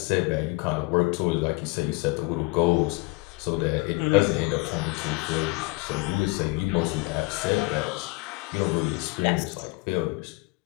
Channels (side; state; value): right; quieter; 25.2 dB